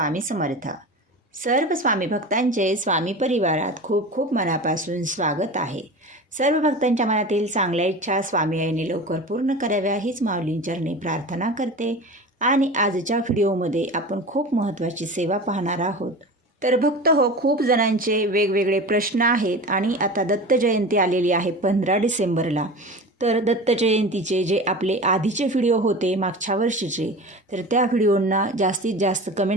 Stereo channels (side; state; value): both; normal; correlation 0.32